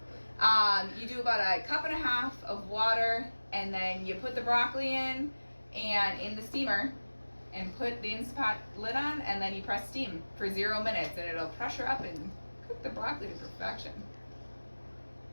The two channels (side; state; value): both; inverted; correlation -1.00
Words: You do about a cup and a half of water, and then you put the broccoli in the steamer and put the Instapot lid on, and then you press steam for 0 minutes, and it'll pressure up and cook the broccoli to perfection.